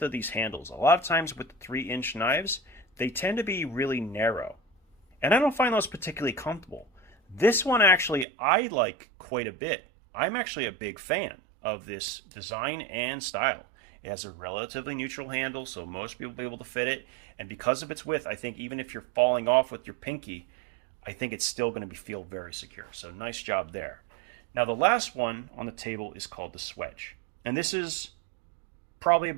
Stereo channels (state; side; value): drops out; left; at 8.2 s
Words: of these handles. A lot of times with the 3-inch knives, they tend to be really narrow, and I don't find those particularly comfortable. This one actually I like quite a bit. I'm actually a big fan of this design and style. It has a relatively neutral handle, so most people will be able to fit it, and because of its width, I think even if you're falling off with your pinky, I think it's still going to feel very secure. So nice job there. Now the last one on the table is called the Swedge, and this is probably